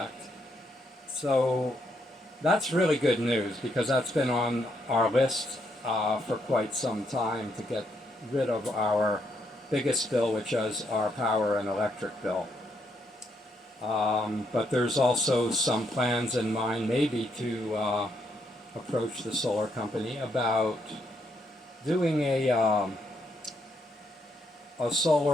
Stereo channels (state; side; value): normal; both; correlation 0.76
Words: So that's really good news because that's been on our list for quite some time to get rid of our biggest bill, which is our power and electric bill. But there's also some plans in mind maybe to approach the solar company about doing a